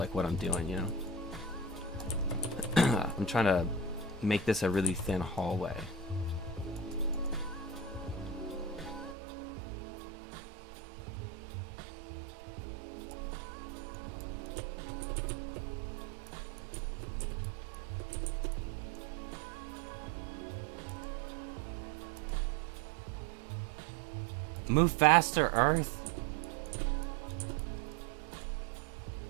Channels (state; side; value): drops out; left; at 9.2 s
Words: what I'm doing, you know. I'm trying to make this a really thin hallway. Move faster, Earth.